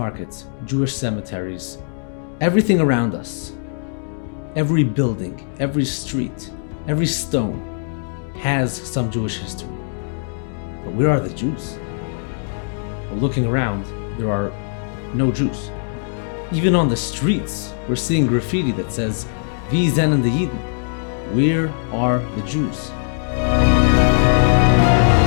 Jewish cemeteries, everything around us. Every building, every street, every stone has some Jewish history. But where are the Jews? Well, looking around, there are no Jews. Even on the streets, we're seeing graffiti that says, "Wie sind die Juden?" Where are the Jews?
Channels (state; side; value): silent; right; digital silence